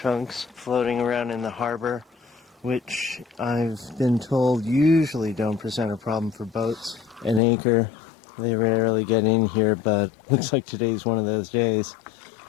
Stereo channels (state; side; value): drops out; right; at 7.4 s